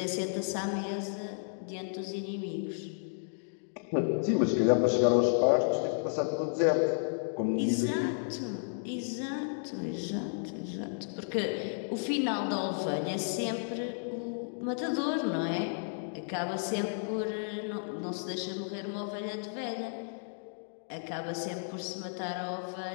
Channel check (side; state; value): right; silent; digital silence